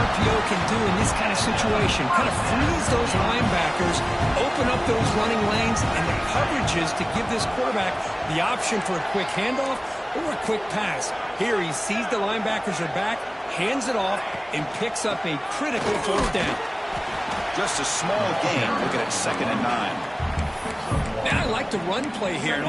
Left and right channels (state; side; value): identical; both; correlation 1.00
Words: can do in this kind of situation. Kind of freeze those linebackers, open up those running lanes, and the coverages to give this quarterback the option for a quick handoff or a quick pass. Here he sees the linebackers are back, hands it off, and picks up a critical fourth down. Just a small gain. Looking at 2nd and 9. Now I like the run play here, and